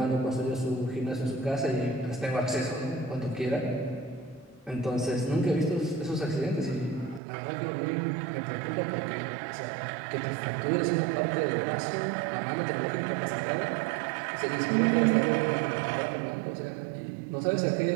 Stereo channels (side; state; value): left; drops out; at 7.2 s